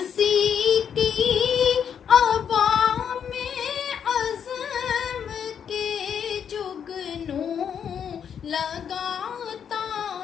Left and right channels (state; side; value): quieter; right; 8.0 dB